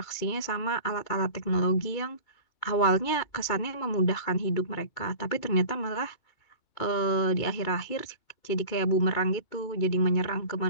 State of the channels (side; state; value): right; late; 2.3 ms